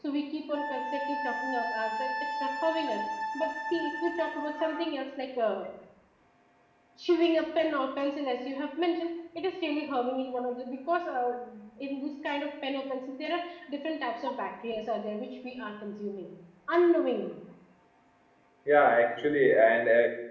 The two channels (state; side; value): identical; both; correlation 1.00